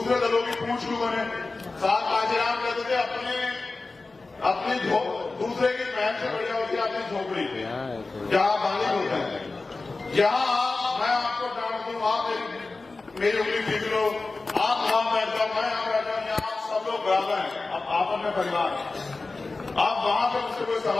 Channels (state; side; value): quieter; right; 3.6 dB